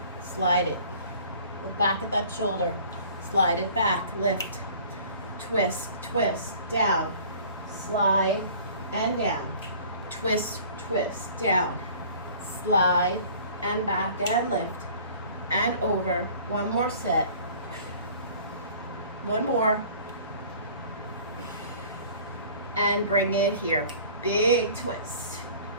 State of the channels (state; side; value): inverted; both; correlation -0.49